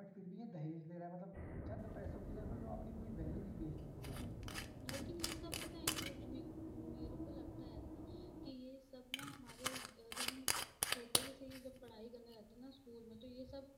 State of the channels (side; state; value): both; identical; correlation 1.00